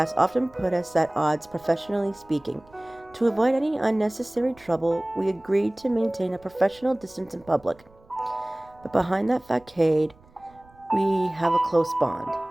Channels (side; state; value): right; noise; rumble, 28 dB below the sound